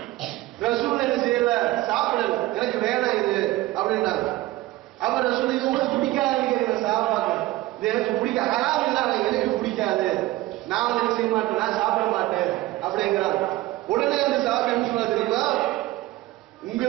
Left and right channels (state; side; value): quieter; left; 17.5 dB